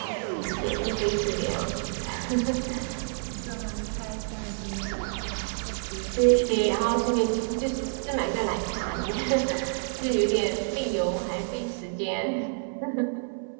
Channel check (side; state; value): left; silent; 59 dB below the other